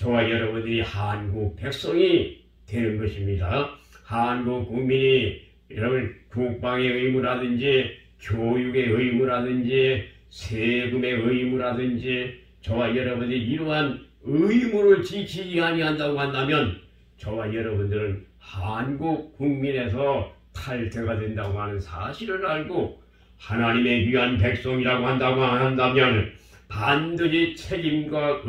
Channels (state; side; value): identical; both; correlation 1.00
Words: 여러분들이 한국 백성이 되는 것입니다. 한국 국민이 여러분 국방의 의무라든지 교육의 의무라든지 세금의 의무라든지 저와 여러분이 이러한 의무를 지키지 아니한다고 한다면 저와 여러분들은 한국 국민에서 탈퇴가 된다고 하는 사실을 알고 하나님의 귀한 백성이라고 한다고 한다면 반드시 책임과